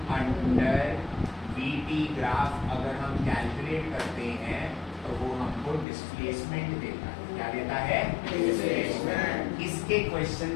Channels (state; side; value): drops out; right; at 5.9 s